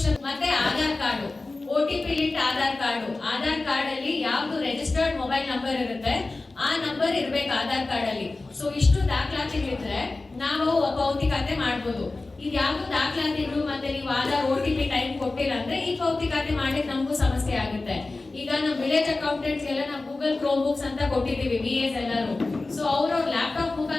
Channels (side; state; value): right; quieter; 3.3 dB